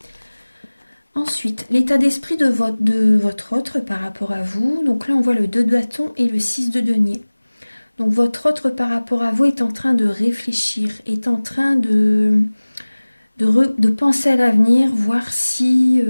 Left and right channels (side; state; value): both; inverted; correlation -1.00